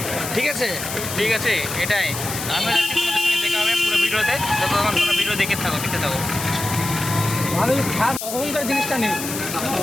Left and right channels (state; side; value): noise; left; hiss, 6 dB below the sound